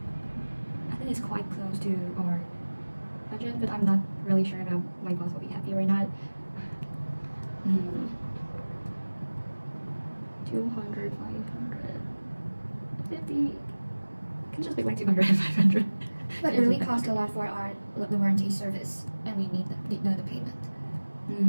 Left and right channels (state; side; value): inverted; both; correlation -1.00